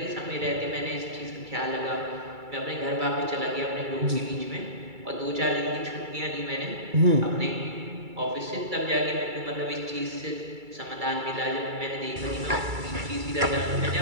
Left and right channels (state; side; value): late; left; 2.3 ms